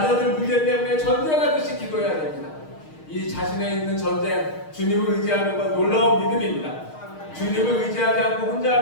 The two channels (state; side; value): late; right; 6.4 ms